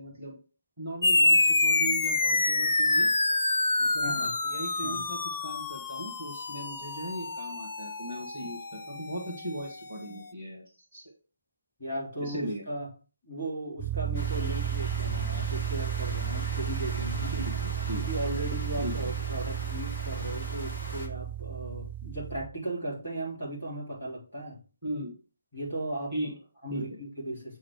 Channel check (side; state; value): both; inverted; correlation -0.61